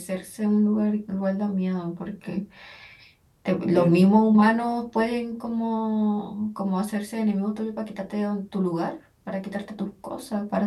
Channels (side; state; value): both; identical; correlation 1.00